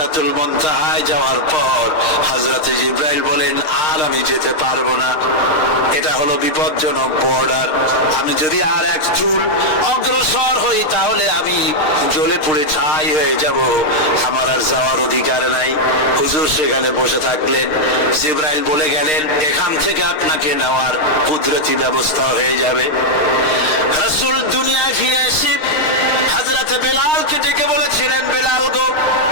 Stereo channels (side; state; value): right; late; 6.5 ms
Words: মুনতাহায় যাওয়ার পর হযরতে জিবরাইল বলেন, আর আমি যেতে পারবো না, এটা হলো বিপজ্জনক বর্ডার। আমি যদি আর এক চুল অগ্রসর হই তাহলে আমি জ্বলে পুড়ে ছাই হয়ে যাব, আমার আর যাওয়ার অধিকার নাই। হুজুর সেখানে বসে থাকলেন। জিবরাইল বলে গেলেন, এখান থেকে আপনাকে নেওয়ার কুদরতি ব্যবস্থা হয়ে যাবে। রাসূল দুনিয়ায় ফিরে এসে হযরত বেলালকে ডেকে বলেছিলেন, বেলাল গো,